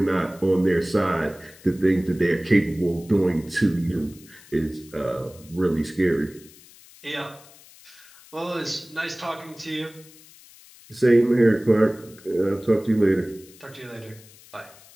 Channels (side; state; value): left; noise; hiss, 23 dB below the sound